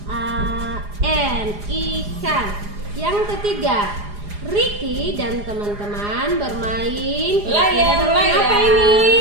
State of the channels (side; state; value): left; late; 4.9 ms